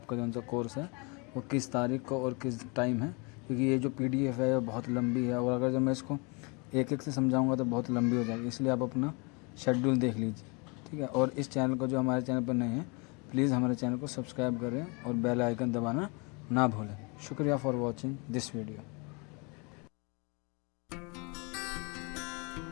जो सा कोर्स है वो किस तारीख को और किस टाइम है, क्योंकि ये जो PDF है वो बहुत लंबी है और अगर जब मैं इसको एक एक से समझाऊंगा तो बहुत लंबी हो जाएगी। इसलिए आप अपना शेड्यूल देख लीजिए, ठीक है। और इस चैनल को जो हमारे चैनल पर नए हैं प्लीज़ हमारे चैनल को सब्सक्राइब करें और बेल आइकन दबाना ना भूलें। शुक्रिया फॉर वॉचिंग दिस वीडियो।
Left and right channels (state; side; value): quieter; right; 31.0 dB